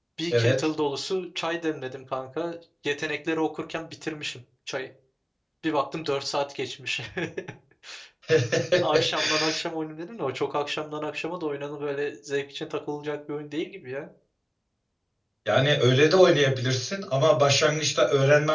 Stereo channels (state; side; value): identical; both; correlation 1.00